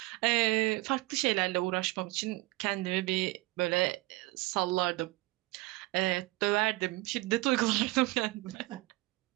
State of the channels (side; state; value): left; quieter; 21.0 dB